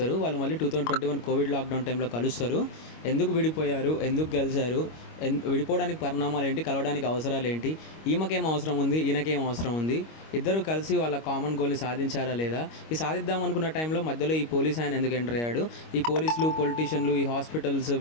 వాళ్ళు మళ్ళీ 2021 కోవిడ్ లాక్డౌన్ టైంలో కలుస్తారు. ఎందుకు విడిపోయారు, ఎందుకు కలిశారు, విడిపోవడానికి పరిణామాలు ఏంటి, కలవడానికి అవసరాలు ఏంటి, ఈమెకేం అవసరం ఉంది, ఈయనకేం అవసరం ఉంది, ఇద్దరు కలిసి వాళ్ళ కామన్ గోల్ని సాధించారా లేదా, ఈ సాధిద్దాం అనుకున్న టైంలో మధ్యలో ఈ పోలీస్ ఆయన ఎందుకు ఎంటర్ అయ్యాడు, ఈ పోలీసులు, పొలిటీషియన్లు, ఈ హాస్పిటల్స్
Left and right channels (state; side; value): late; right; 25 ms